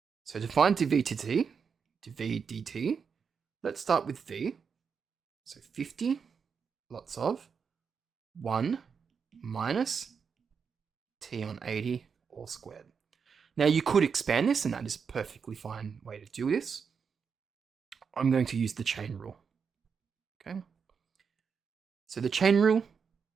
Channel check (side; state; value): left; quieter; 6.2 dB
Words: So to find dv dt, let's start with v. So 50 lots of 1 minus T on 80 all squared. Now you could expand this, and that is a perfectly fine way to do this. I'm going to use the chain rule. Okay. So the chain rule,